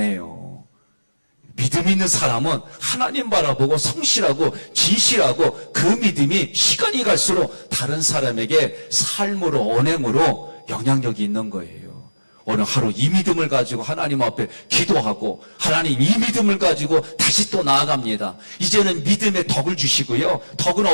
믿음 있는 사람은 하나님 바라보고 성실하고 진실하고 그 믿음이 시간이 갈수록 다른 사람에게 삶으로 언행으로 영향력이 있는 거예요. 오늘 하루 이 믿음을 가지고 하나님 앞에 기도하고 하나님 이 믿음을 가지고 다시 또 나아갑니다. 이제는 믿음의 덕을 주시고요. 덕은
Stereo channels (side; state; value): both; inverted; correlation -1.00